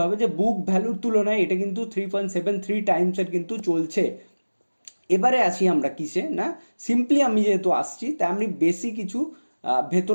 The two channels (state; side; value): inverted; both; correlation -1.00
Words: হবে যে বুক ভ্যালুর তুলনায় এটা কিন্তু 3.73 টাইমসের কিন্তু চলছে। এবারে আসি আমরা কিসে না, সিম্পলি আমি যেহেতু আসছি তাই আমি বেশি কিছু